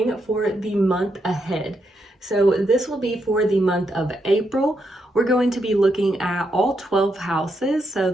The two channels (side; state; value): both; normal; correlation 0.81